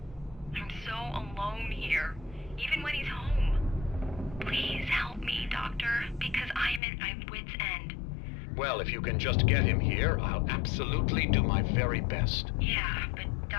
I'm so alone here, even when he's home. Please help me, Doctor, because I'm at my wit's end. Well, if you can just get him here, I'll absolutely do my very best. Yeah, but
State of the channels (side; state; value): right; drops out; at 6.8 s